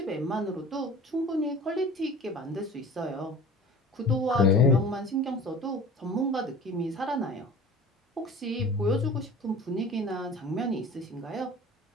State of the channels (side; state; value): both; normal; correlation 0.41